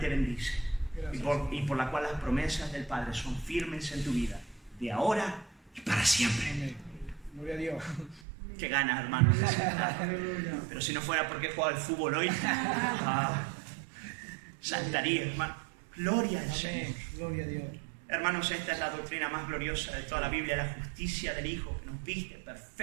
bendice y por la cual las promesas del Padre son firmes en tu vida, de ahora y para siempre. Amén. Gloria a Dios. Qué ganas, hermanos. Pero si no fuera porque he jugado al fútbol hoy, saltaría, hermano. Gloria al Señor. Amén. Gloria a Dios. Hermanos, esta es la doctrina más gloriosa de toda la Biblia, la justicia del Hijo, que nos viste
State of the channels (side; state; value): left; drops out; at 8.2 s